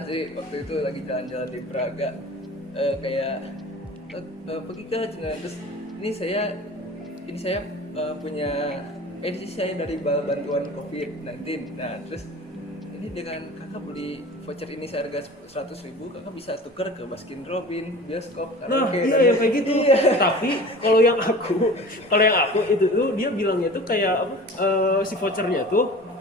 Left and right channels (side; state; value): both; normal; correlation 0.40